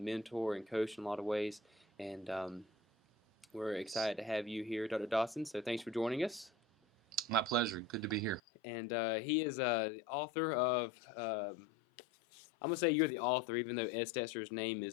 mentor and coach in a lot of ways. And we're excited to have you here, Dr. Dodson. So thanks for joining us. My pleasure. Good to be here. And he is the author of, I'm going to say you're the author, even though Ed Stetzer's name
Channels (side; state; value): right; drops out; at 8.4 s